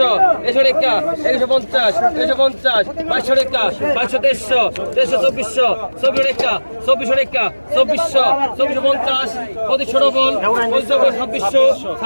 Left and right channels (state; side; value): inverted; both; correlation -1.00